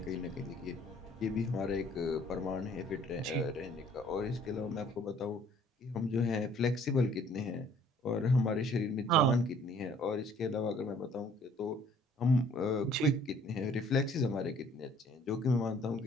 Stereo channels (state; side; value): normal; both; correlation 0.57